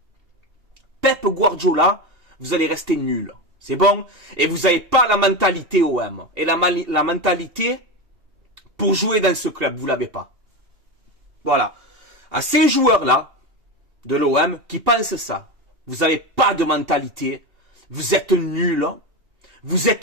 Pep Guardiola, vous allez rester nul. C'est bon? Et vous n'avez pas la mentalité OM. Et la mentalité pour jouer dans ce club, vous l'avez pas. Voilà. À ces joueurs-là, de l'OM, qui pensent ça, vous n'avez pas de mentalité, vous êtes nuls, vous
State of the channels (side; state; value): left; late; 2.8 ms